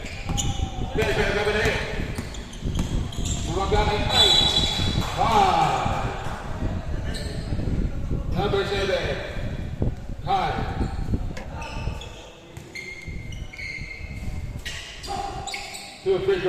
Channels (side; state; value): both; identical; correlation 1.00